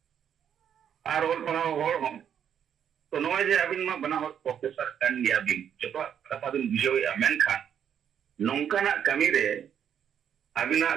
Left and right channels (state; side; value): quieter; left; 8.8 dB